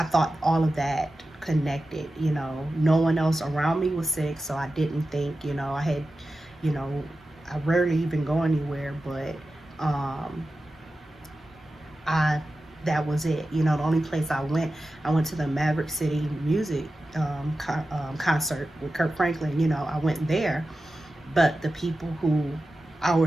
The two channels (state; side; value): normal; both; correlation 0.93